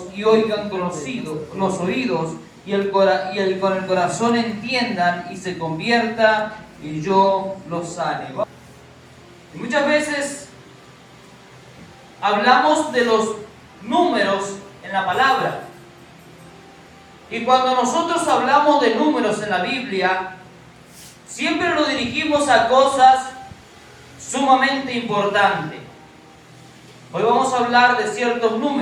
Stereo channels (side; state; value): both; identical; correlation 1.00